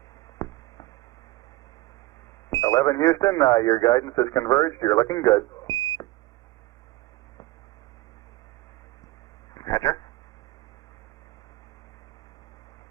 Houston, your guidance is converged. You're looking good. Roger.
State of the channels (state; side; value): quieter; left; 18.4 dB